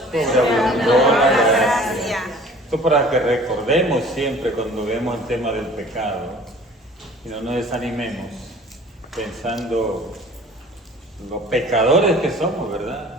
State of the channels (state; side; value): normal; both; correlation 0.48